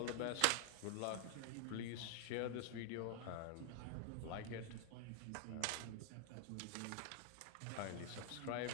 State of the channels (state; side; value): different; both; correlation 0.00